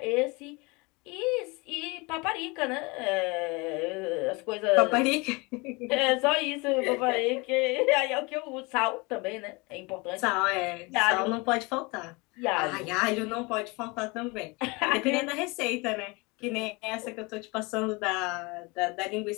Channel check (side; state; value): right; quieter; 26.8 dB